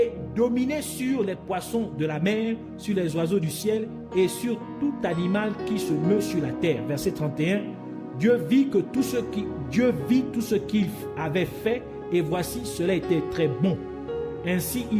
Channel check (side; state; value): both; identical; correlation 1.00